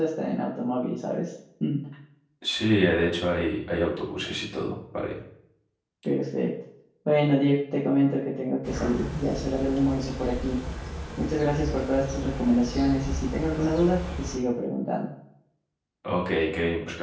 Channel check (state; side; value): identical; both; correlation 1.00